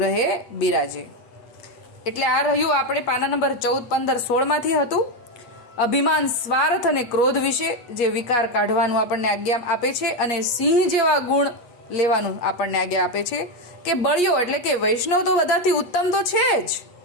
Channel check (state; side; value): late; right; 8.4 ms